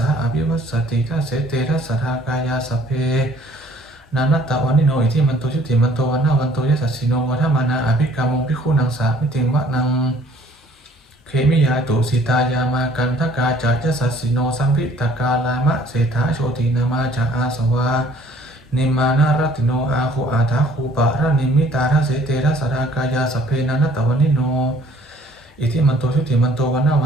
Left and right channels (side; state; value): both; normal; correlation 0.57